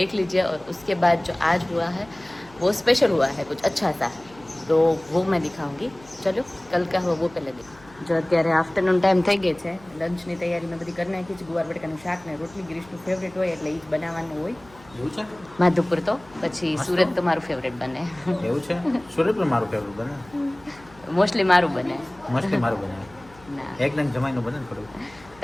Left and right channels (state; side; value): noise; left; hum, 24 dB below the sound